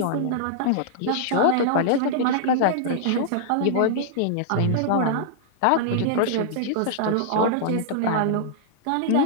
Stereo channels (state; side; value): different; both; correlation -0.02